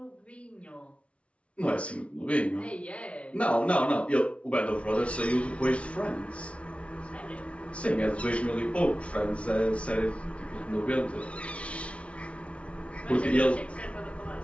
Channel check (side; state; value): right; late; 0.062 ms